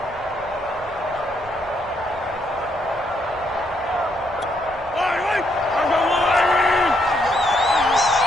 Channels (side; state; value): right; noise; rumble, 21 dB below the sound